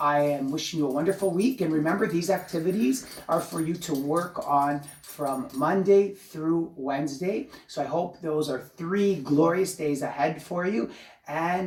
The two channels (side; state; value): both; identical; correlation 1.00